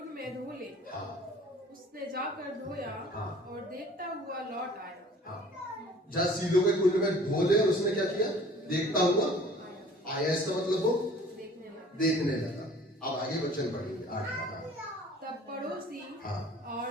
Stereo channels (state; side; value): normal; both; correlation 0.50